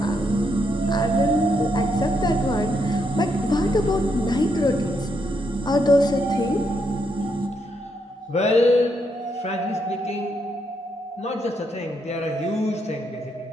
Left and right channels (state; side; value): normal; both; correlation 0.78